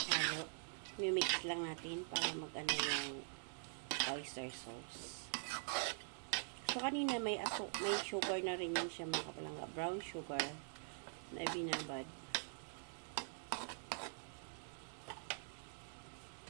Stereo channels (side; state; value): left; silent; digital silence